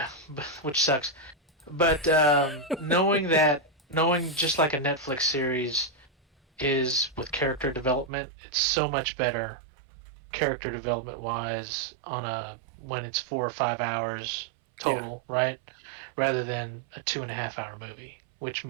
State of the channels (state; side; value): drops out; left; at 8.1 s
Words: which sucks. But knowing just like a Netflix series is with character development, it's so much better character development wise when it's 4 or 5 hours total, right? Rather than a 2.5 hour movie, which